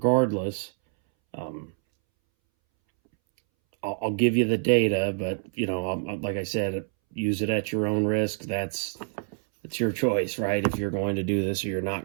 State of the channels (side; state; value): left; silent; 60 dB below the other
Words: I'll give you the data, but, you know, like I said, use it at your own risk. That's your choice, right? If you're going to do this or you're